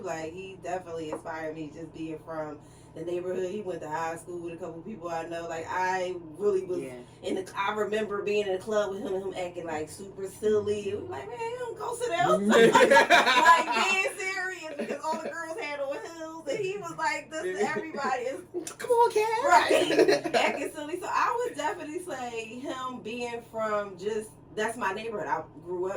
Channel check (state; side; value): identical; both; correlation 1.00